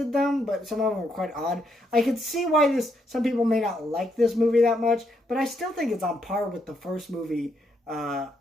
them, but some of them were quite odd. I could see why some people may not like this movie that much, but I still think it's on par with the first movie.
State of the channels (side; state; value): both; normal; correlation 0.76